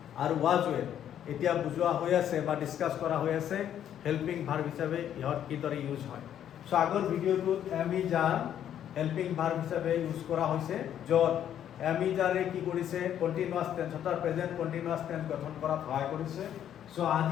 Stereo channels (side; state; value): right; quieter; 10.2 dB